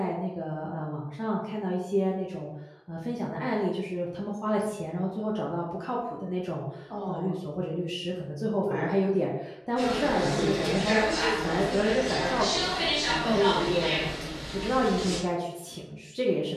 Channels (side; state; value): both; identical; correlation 1.00